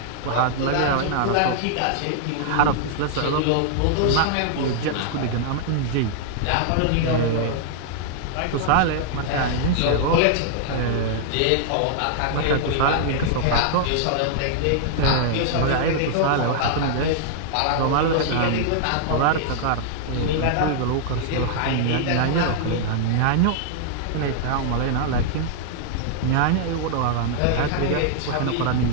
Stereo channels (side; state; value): both; different; correlation -0.01